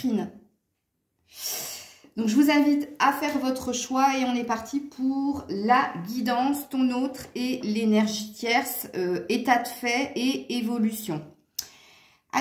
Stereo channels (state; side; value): identical; both; correlation 1.00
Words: Donc, je vous invite à faire votre choix et on est parti pour la guidance, ton autre et l'énergie tierce, état de fait et évolution.